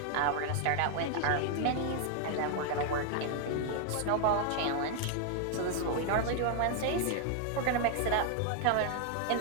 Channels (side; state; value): both; different; correlation 0.00